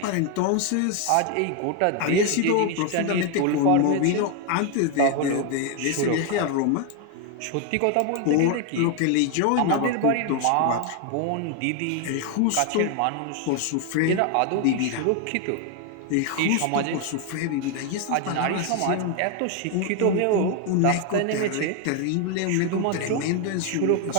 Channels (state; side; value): different; both; correlation 0.01